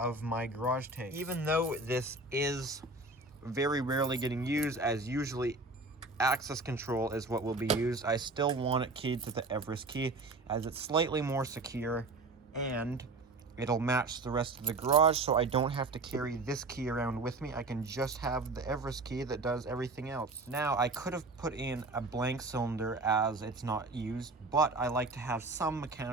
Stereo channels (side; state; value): left; quieter; 3.2 dB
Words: my garage takes. Even though this is very rarely getting used, as usually access control is what will be used, I still want it keyed to the Everest key as it's slightly more secure and it'll match the rest of the garage, so I don't have to carry this key around with me. I can just have the Everest key that does everything else. Now, I could have put in a blank cylinder as it's not used, but I like to have some